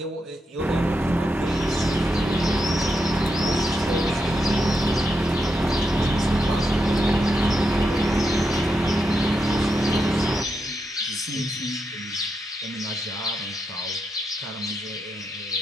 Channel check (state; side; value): normal; both; correlation 0.84